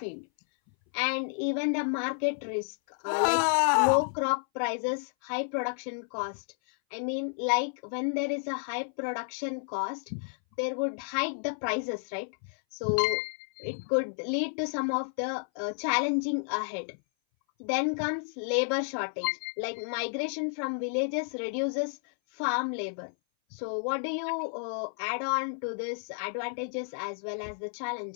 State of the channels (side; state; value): right; silent; 57 dB below the other